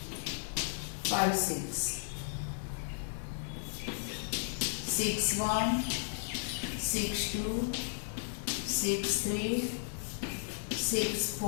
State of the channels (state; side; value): silent; right; digital silence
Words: 5, 6. 6, 1, 6, 2, 6, 3, 6,